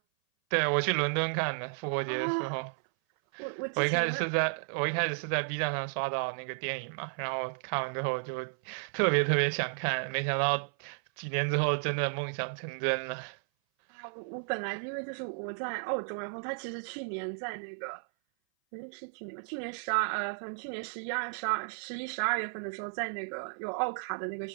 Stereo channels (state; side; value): silent; left; 56 dB below the other